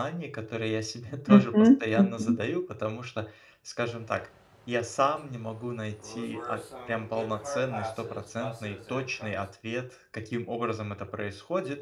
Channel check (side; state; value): both; identical; correlation 1.00